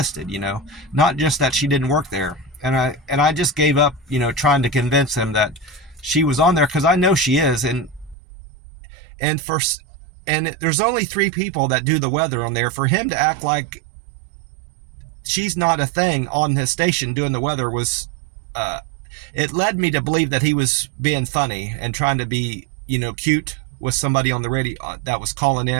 not just that she didn't work there. And I just gave up, trying to convince him that she was on there, because I know she is. And there's only 3 people that do the weather on there. For him to act like she's not a thing on his station doing the weather was, it led me to believe that he was being funny and trying to be, cute with somebody on the radio that was calling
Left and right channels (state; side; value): drops out; left; at 8.2 s